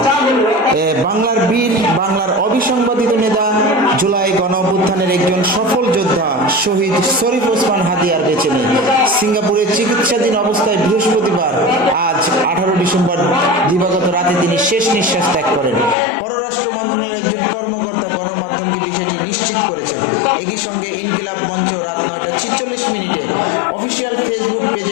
বাংলার বীর, বাংলার অবিসংবাদিত নেতা, জুলাই গণ অভ্যুত্থানের একজন সফল যোদ্ধা শহীদ শরীফ ওসমান হাদি আর বেঁচে নেই। সিঙ্গাপুরের চিকিৎসাধীন অবস্থায় বৃহস্পতিবার আজ 18 ডিসেম্বর দিবাগত রাতে তিনি শেষ নিঃশ্বাস ত্যাগ করেন। পররাষ্ট্র মন্ত্রণালয়ের একজন কর্মকর্তা গণমাধ্যমকে বিষয়টি নিশ্চিত করেছেন। একই সঙ্গে ইনকিলাব মঞ্চ রাত 9:46 অফিসিয়াল ফেসবুক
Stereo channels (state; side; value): drops out; right; at 16.0 s